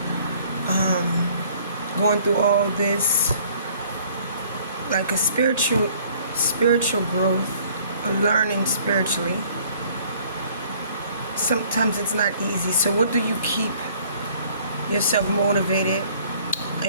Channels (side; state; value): both; inverted; correlation -0.57